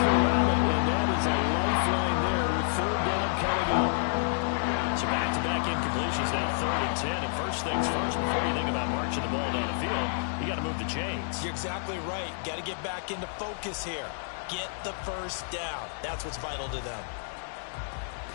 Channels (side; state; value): right; silent; digital silence